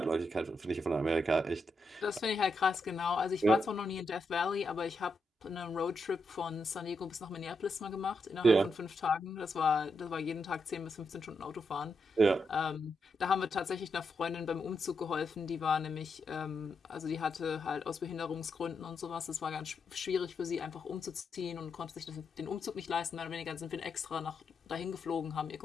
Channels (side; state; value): both; normal; correlation 0.83